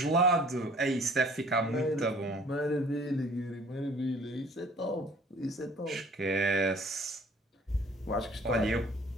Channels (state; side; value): normal; both; correlation 0.53